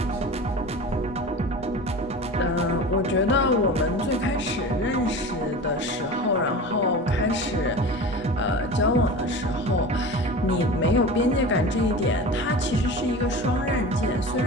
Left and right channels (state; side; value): normal; both; correlation 0.33